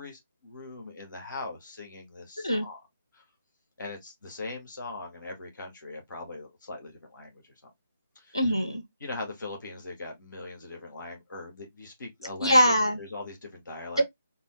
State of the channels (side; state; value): both; inverted; correlation -0.80